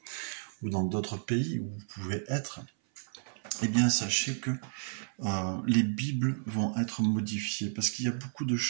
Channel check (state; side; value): silent; left; 56 dB below the other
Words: ou dans d'autres pays où vous pouvez être, eh bien sachez que les Bibles vont être modifiées parce qu'il y a beaucoup de